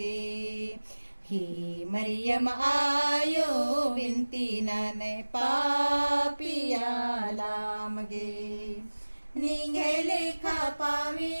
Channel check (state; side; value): inverted; both; correlation -1.00